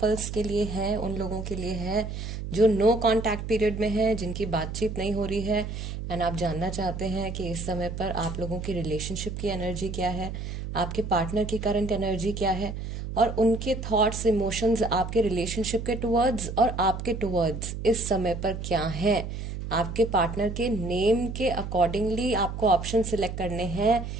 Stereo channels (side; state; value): right; noise; hum, 6 dB below the sound